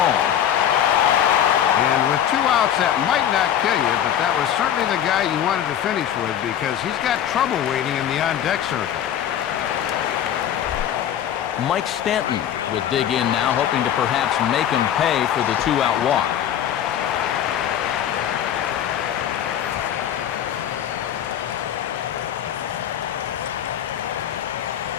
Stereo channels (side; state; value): right; quieter; 10.2 dB